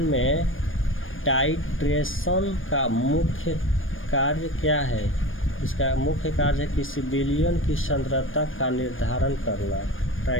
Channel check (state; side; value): late; right; 0.59 ms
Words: में टाइट्रेशन का मुख्य कार्य क्या है? इसका मुख्य कार्य है किसी विलयन की सांद्रता का निर्धारण करना।